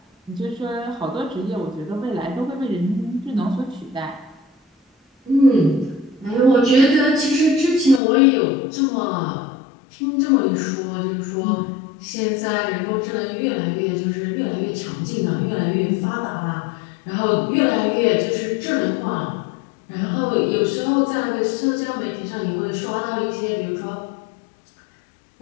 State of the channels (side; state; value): right; drops out; at 8.0 s